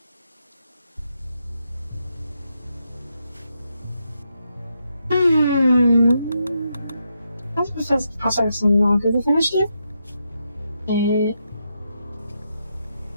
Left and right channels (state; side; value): inverted; both; correlation -0.82